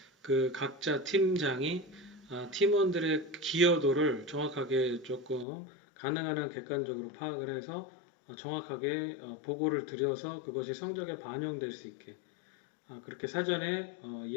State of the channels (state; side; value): drops out; right; at 5.5 s